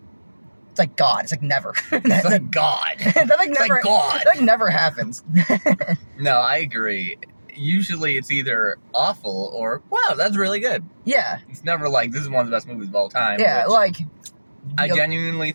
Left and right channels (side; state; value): both; inverted; correlation -1.00